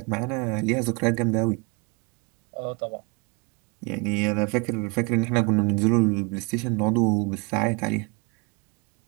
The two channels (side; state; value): left; quieter; 31.2 dB